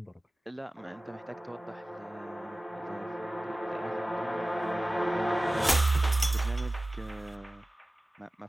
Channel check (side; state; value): both; normal; correlation 0.97